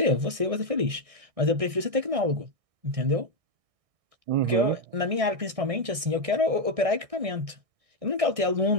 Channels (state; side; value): late; left; 1.6 ms